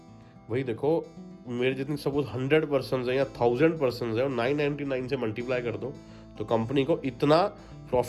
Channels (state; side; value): identical; both; correlation 1.00